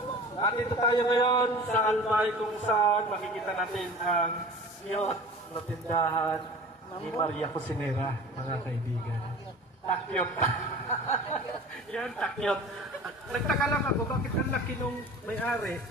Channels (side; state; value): both; normal; correlation 0.40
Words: At dito tayo ngayon sa Albay kung saan makikita natin ang cute na tindahan ni Maria Cosinera, mga kaibigan. Takyot. Yan, takyot. Nagtaka lang ako, bakit ang laki nung may-ari?